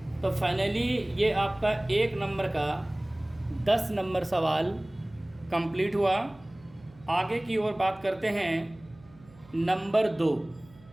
तो फाइनली ये आपका 1 नंबर का 10 नंबर सवाल कंप्लीट हुआ। आगे की ओर बात करते हैं नंबर 2।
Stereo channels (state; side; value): noise; right; hum, 25 dB below the sound